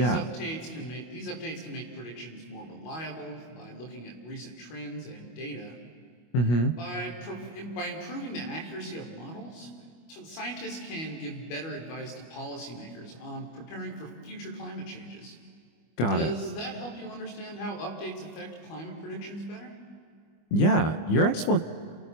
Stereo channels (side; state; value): right; late; 25 ms